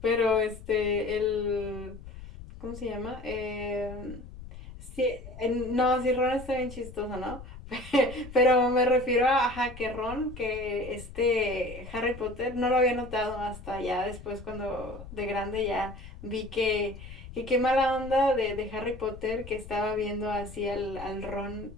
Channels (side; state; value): left; noise; rumble, 14 dB below the sound